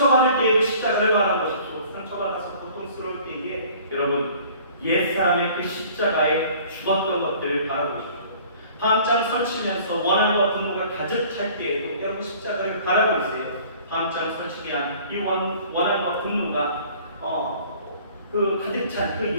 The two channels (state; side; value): inverted; both; correlation -0.51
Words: 때에도 십자가를 바라보십시오. 상처받아서 고통스러울 때에 여러분, 옛사람의 그 십자가에 죽었던 것들을 바라보십시오. 밤잠 설치면서 원한과 분노가 가득 찰 때에도 여러분 십자가를 바라보세요. 밤잠 설치게 한 이 원한과 분노가 그 가득 찬 그